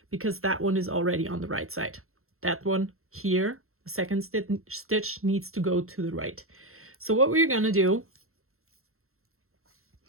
because that one is already on the right side. That one here, the second stitch needs to go to the right. So what we're going to do,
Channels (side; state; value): left; late; 0.62 ms